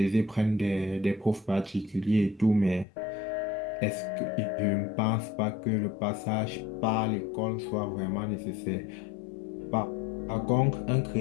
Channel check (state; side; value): drops out; right; at 2.9 s